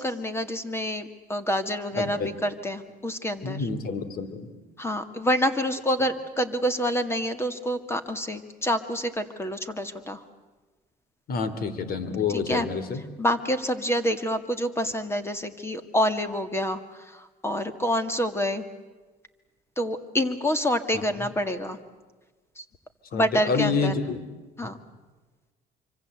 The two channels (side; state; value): both; normal; correlation 0.48